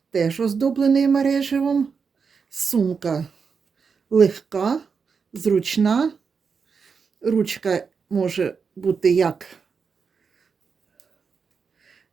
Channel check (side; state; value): left; quieter; 5.6 dB